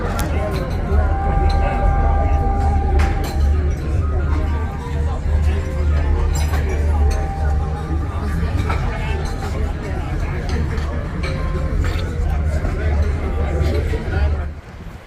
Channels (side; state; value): both; identical; correlation 1.00